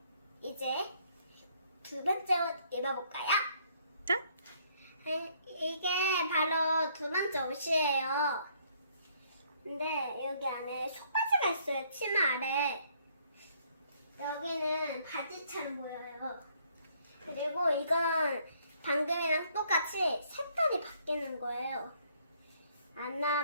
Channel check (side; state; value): both; inverted; correlation -0.66